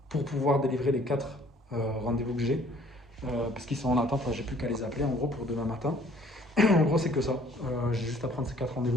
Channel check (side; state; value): both; normal; correlation 0.57